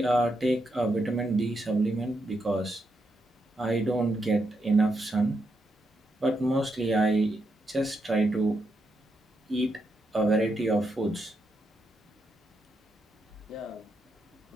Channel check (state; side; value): normal; both; correlation 0.82